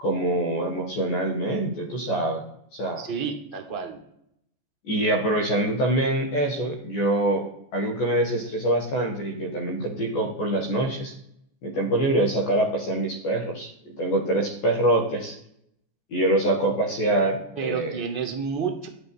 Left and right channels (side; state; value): right; late; 14 ms